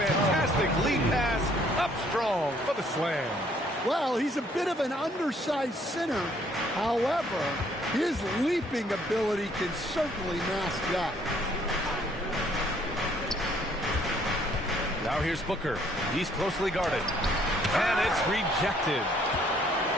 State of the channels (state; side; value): normal; both; correlation 0.64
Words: lead pass up strong for the slam. Well, he's a bit of an undersized center. However, his leaping ability can certainly mask that. Now here's Booker. He's closely guarded. And it's rejected.